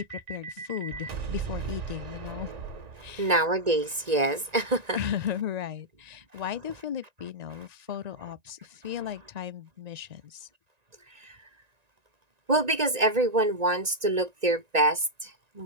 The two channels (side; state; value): left; late; 1.9 ms